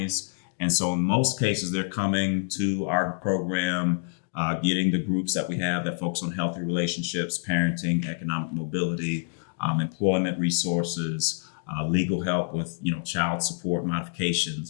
and so in most cases they're coming to our program, getting the groups that we have that focus on healthy relationships, parenting, economic mobility, employment resources, legal help with child support modifications,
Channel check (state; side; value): silent; right; digital silence